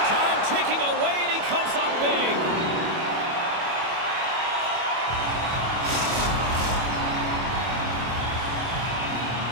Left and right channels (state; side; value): late; left; 25 ms